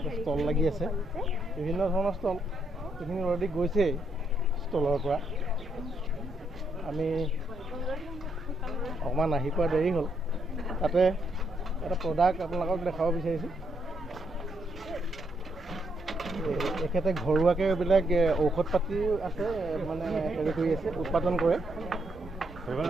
ষ্টল লাগি আছে বিভিন্ন ধৰণৰ ষ্টল এইখিনি অলৰেডি গৈছে ষ্টলৰ পৰা আমি অকণমান আহি পোৱা দেৰি হ'ল তাতে এটা প্ৰডাক্ট আপোনালোকক দেখাব বিচাৰিছোঁ এখেতে ঘৰুৱাকৈ এইবিলাক ঔষধ পাতি আছে মানে হেৰি কৰি আছে উৎপাদন কৰে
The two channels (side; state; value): both; normal; correlation 0.77